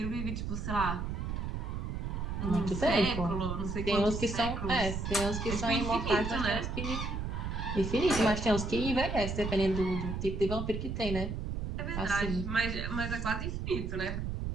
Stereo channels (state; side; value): noise; right; rumble, 3 dB below the sound